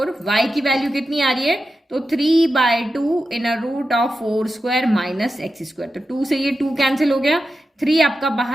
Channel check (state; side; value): normal; both; correlation 0.90